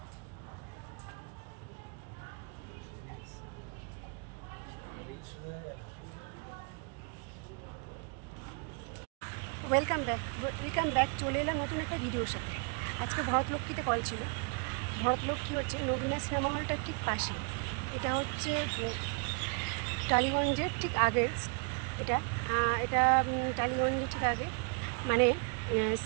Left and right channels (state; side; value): quieter; left; 37.8 dB